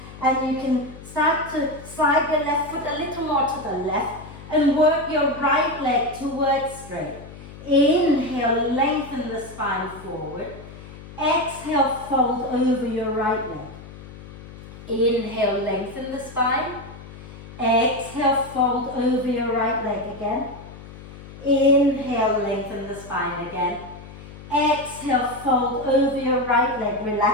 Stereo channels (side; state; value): left; noise; hum, 16 dB below the sound